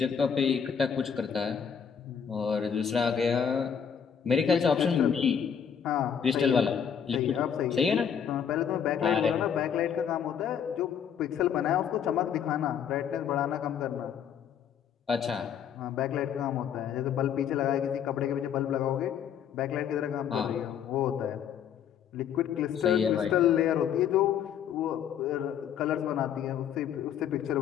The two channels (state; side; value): quieter; right; 8.1 dB